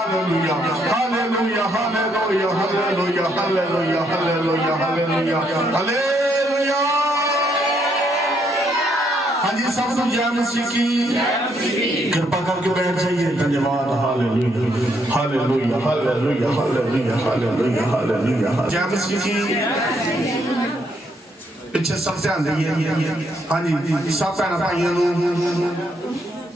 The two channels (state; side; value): normal; both; correlation 0.73